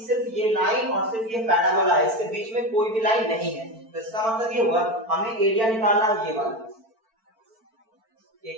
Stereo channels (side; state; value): left; late; 4.5 ms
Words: सिर्फ ये लाइन और सिर्फ ये पैराबोला है, इसके बीच में कोई भी लाइन नहीं है। तो इसका मतलब ये हुआ हमें एरिया निकालना है, ये वाला, ये